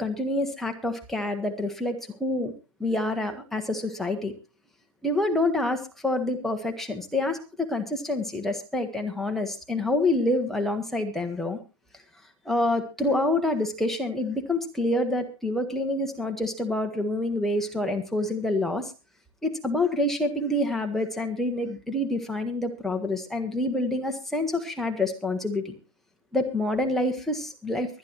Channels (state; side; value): normal; both; correlation 0.57